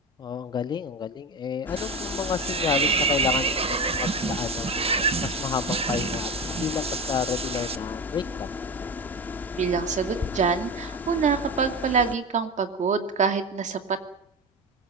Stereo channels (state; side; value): normal; both; correlation 0.24